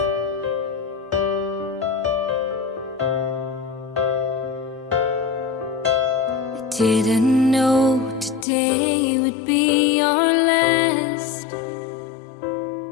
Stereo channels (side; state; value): right; drops out; at 8.5 s